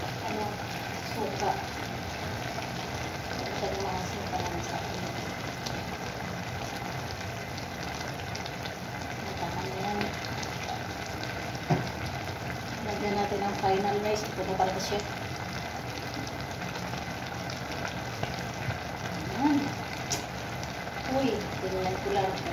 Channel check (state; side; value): identical; both; correlation 1.00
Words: suka. Ito yung mga suka lang sa akin. Lagyan natin ang final guys. Ito na para siya. Ayan. Uy, tingnan ko lang.